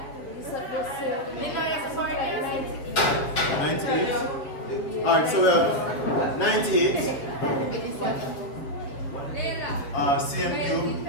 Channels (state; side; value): late; right; 7.0 ms